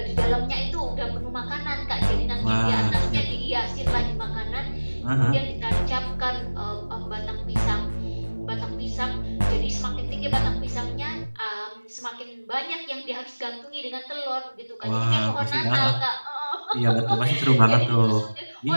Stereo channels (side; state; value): both; inverted; correlation -1.00